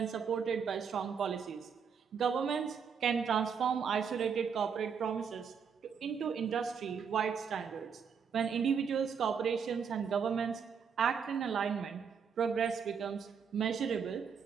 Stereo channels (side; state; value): left; quieter; 6.6 dB